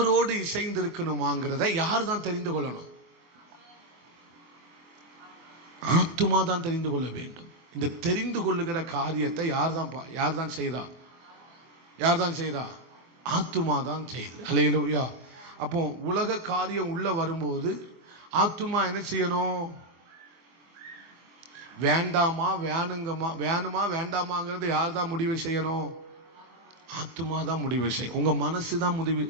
இசைந்து இருக்கணுமாங்கிறத யார் தான் தெரிந்து கொள்ளணும்? ஆத்துமா தான் தெரிந்து கொள்ள வேண்டும். இந்த தெரிந்து கொள்ளுகிற காரியத்தை யார் தான் செய்தா? ஆத்துமா தான் செய்யுது. ஹல்லேலூயா. அப்போ உலக காரியம் உள்ள வரும்போது ஆத்துமா என்ன செய்யணும்? வேண்டாமா வேணுமா வேண்டாமாங்கிறது யார் தான் முடிவு செய்யணும்? ஆத்துமா தான் முடிவு செய்யும். உங்க மனசு தான் முடிவு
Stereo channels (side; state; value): left; late; 24 ms